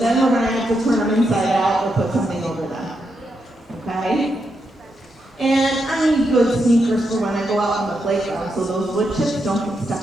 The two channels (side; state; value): both; normal; correlation 0.83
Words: we're going to have to turn them inside out or put something over them. Okay? And I need good sneakers for when I go out on the playground so those wood chips don't get